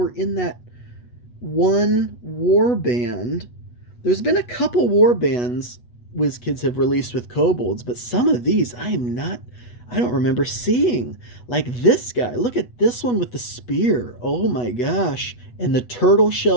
in that one warband. There's been a couple warbands WizKids have released with kobolds, but some of these I don't remember seeing. Like this guy. Look at this one with the spear. Oh my gosh. And the tortoise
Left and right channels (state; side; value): late; right; 8.2 ms